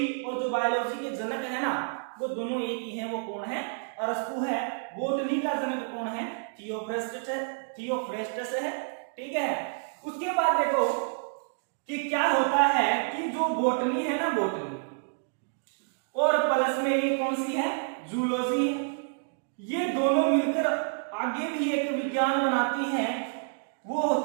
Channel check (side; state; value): left; silent; digital silence